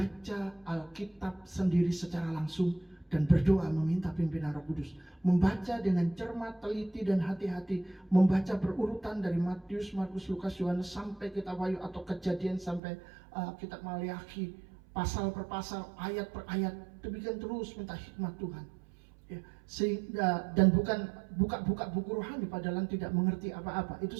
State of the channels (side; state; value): left; drops out; at 12.8 s